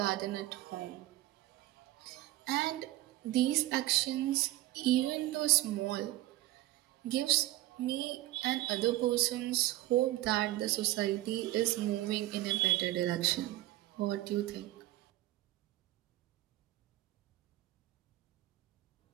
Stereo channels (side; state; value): left; quieter; 16.6 dB